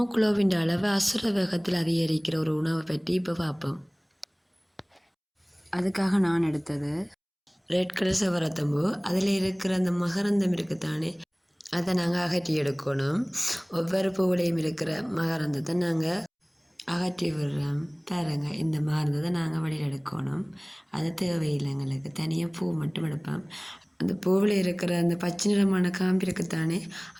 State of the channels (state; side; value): identical; both; correlation 1.00